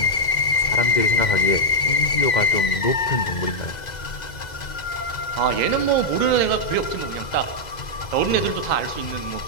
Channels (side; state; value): right; late; 2.0 ms